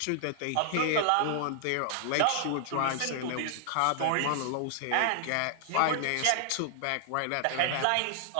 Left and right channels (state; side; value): different; both; correlation 0.00